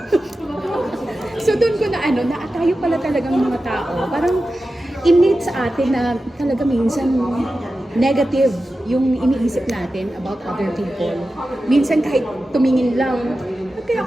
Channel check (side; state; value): both; normal; correlation 0.93